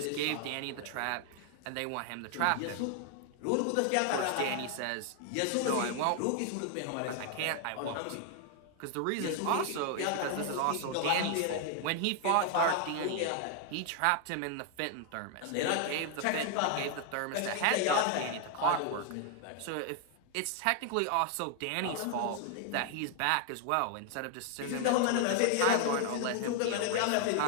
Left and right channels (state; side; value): different; both; correlation 0.00